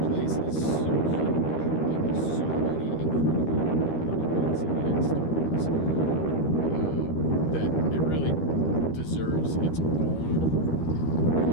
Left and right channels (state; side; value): late; right; 13 ms